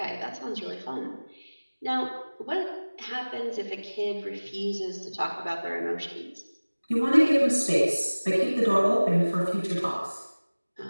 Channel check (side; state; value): both; inverted; correlation -1.00